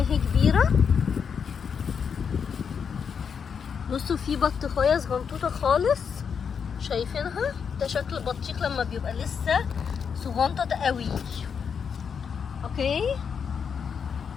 اهي كبيرة. بصوا في بطيخية صغنطوطة خالص، شايفينها؟ ده شكل البطيخ لما بيبقى لسه صغنطط قوي. اوكي،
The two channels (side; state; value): right; quieter; 6.7 dB